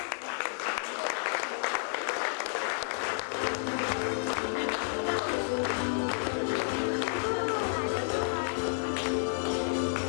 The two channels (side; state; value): right; silent; digital silence